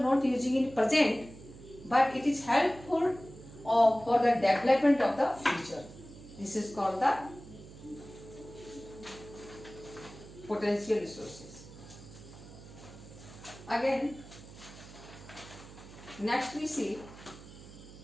using in present, but it is helpful for the development of the future. This is called the potential resources. Again, next we see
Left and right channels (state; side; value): noise; right; hum, 17 dB below the sound